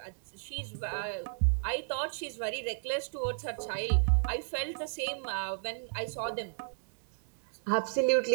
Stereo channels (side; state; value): left; silent; 56 dB below the other